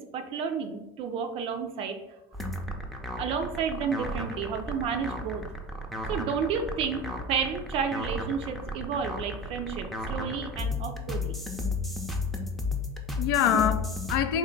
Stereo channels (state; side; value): normal; both; correlation 0.30